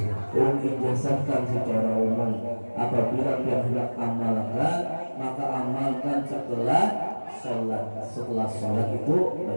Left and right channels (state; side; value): inverted; both; correlation -1.00